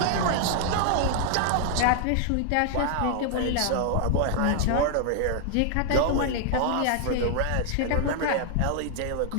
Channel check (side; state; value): both; different; correlation 0.00